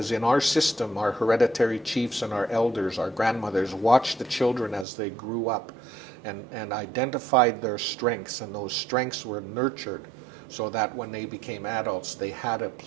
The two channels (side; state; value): left; drops out; at 4.9 s